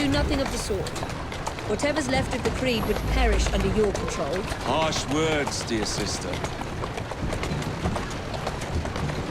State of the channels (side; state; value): both; identical; correlation 1.00